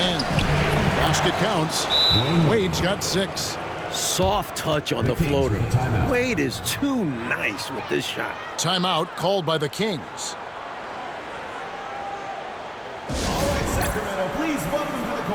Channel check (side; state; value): both; identical; correlation 1.00